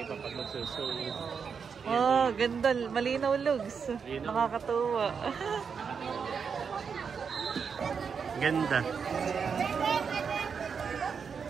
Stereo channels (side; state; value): left; quieter; 6.2 dB